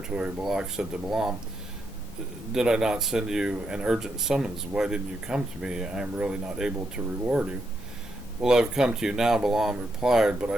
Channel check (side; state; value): both; normal; correlation 0.81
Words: Balak said to Balaam, Did I not send you an urgent summons? Why didn't you come to me? I am really not able to reward you. Well, I've come to you now, Balaam replied, but